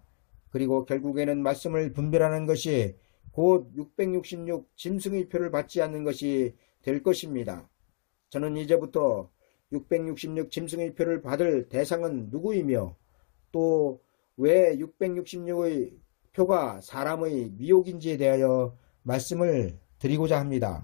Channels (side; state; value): right; silent; digital silence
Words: 그리고 결국에는 말씀을 분별하는 것이 곧 666 짐승의 표를 받지 않는 것이 될 것입니다. 저는 이제부터 666 짐승의 표를 받을 대상은 누구이며 또 왜 666의 표가 사람의 미혹인지에 대하여 말씀을 드리고자